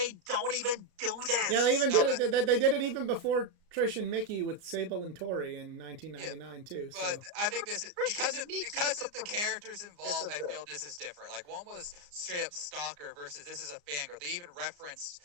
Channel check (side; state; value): left; late; 34 ms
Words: Don't even do this. Yeah, they even did it. They did it even before Trish and Mickey with Sable and Tori in 1999 too. But So. I think this is because of the characters involved. I feel this is different. Like, one was straight up stalker versus this is a fangirl. They even referenced